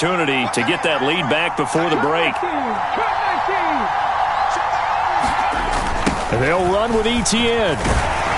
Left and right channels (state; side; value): identical; both; correlation 1.00